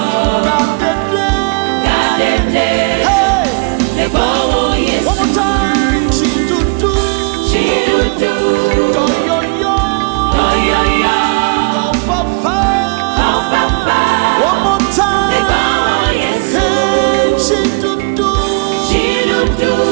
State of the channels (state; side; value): quieter; left; 34.6 dB